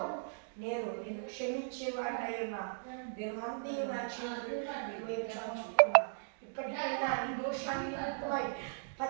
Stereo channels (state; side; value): silent; left; digital silence